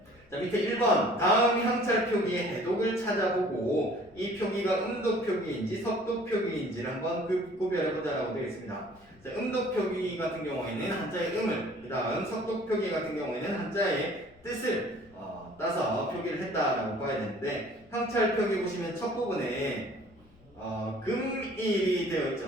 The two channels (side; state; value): left; noise; rumble, 29 dB below the sound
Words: 자 밑에 1번 다음 향찰 표기의 해독을 찾아보고 이 표기가 음독 표기인지 석독 표기인지를 한번 구별해보자라고 되어 있습니다. 자, 음독 표기 같은 경우에는 한자의 음을 그 다음 석독 표기 같은 경우에는 한자의 뜻을 따서 표기를 했다라고 봐야 되는데 향찰 표기 보시면 첫 부분에 금일이 되어